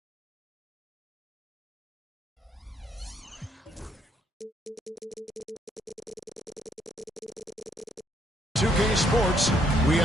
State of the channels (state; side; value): normal; both; correlation 0.71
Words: .2K Sports, we